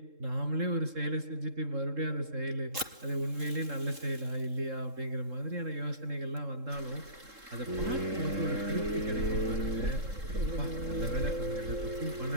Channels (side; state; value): left; late; 3.7 ms